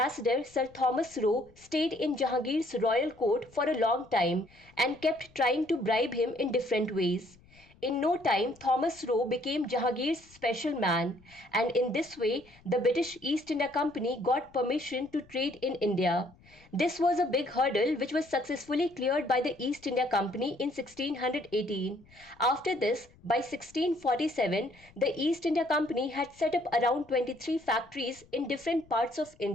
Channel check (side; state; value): left; noise; rumble, 27 dB below the sound